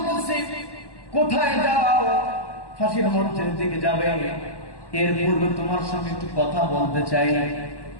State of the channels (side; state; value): right; late; 1.1 ms